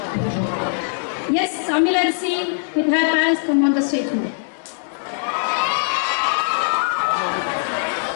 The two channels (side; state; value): right; silent; digital silence